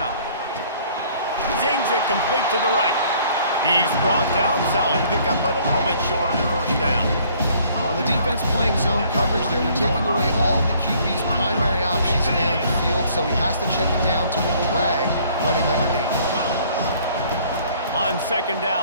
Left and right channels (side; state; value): both; inverted; correlation -0.59